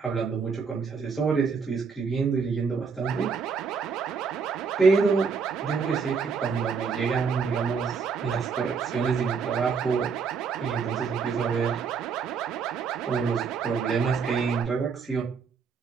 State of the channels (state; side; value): quieter; left; 5.5 dB